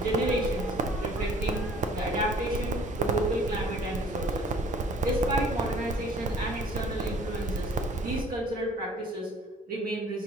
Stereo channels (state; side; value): normal; both; correlation 0.53